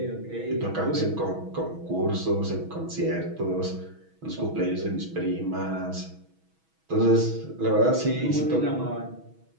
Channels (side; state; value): left; late; 6.2 ms